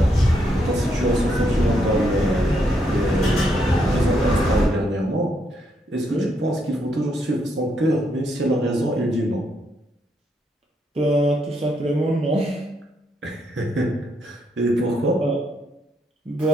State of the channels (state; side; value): normal; both; correlation 0.76